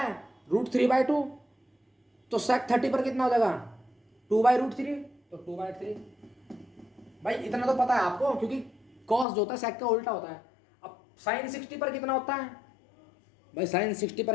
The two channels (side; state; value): right; drops out; at 9.2 s